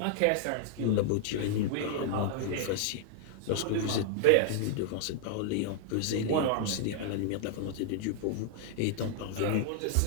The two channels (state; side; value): different; both; correlation -0.01